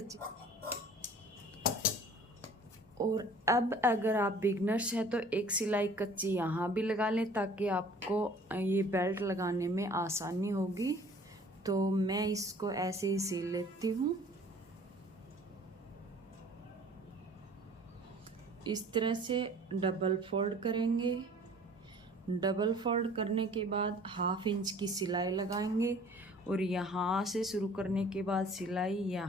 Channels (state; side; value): normal; both; correlation 0.50